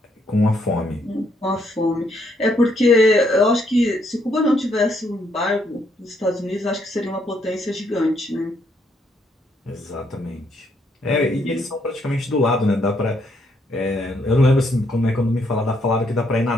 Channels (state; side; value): normal; both; correlation 0.73